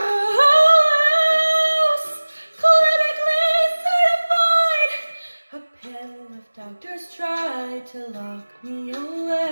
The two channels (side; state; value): both; inverted; correlation -1.00